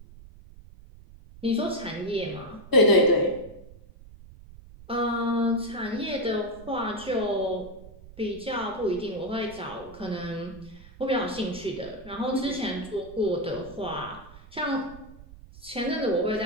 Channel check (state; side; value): noise; right; rumble, 19 dB below the sound